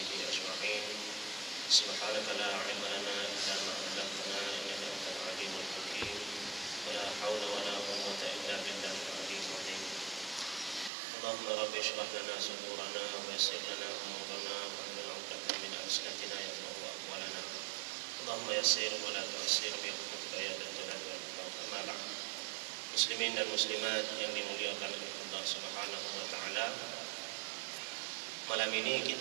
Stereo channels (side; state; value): left; drops out; at 10.9 s